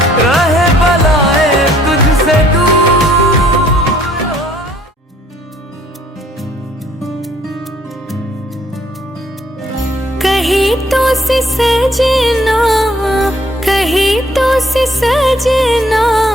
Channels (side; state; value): both; normal; correlation 0.62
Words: कहीं तो से सजना, कहीं तो से सजना,